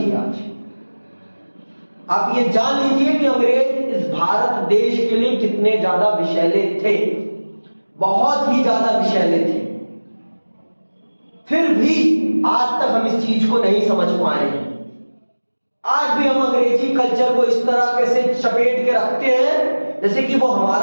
आज आप ये जान लीजिए कि अंग्रेज इस भारत देश के लिए कितने ज्यादा विषैले थे, बहुत ही ज्यादा विषैले थे। फिर भी आज तक हम इस चीज को नहीं समझ पाए हैं। आज भी हम अंग्रेजी कल्चर को इस तरह से चपेट के रखते हैं जैसे कि वो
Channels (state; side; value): inverted; both; correlation -1.00